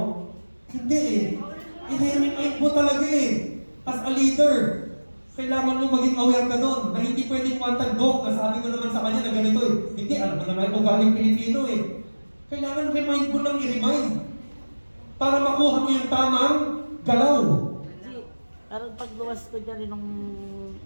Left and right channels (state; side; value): inverted; both; correlation -1.00